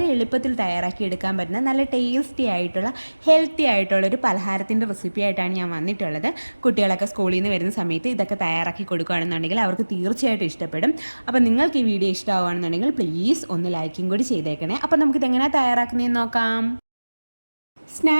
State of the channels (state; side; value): inverted; both; correlation -1.00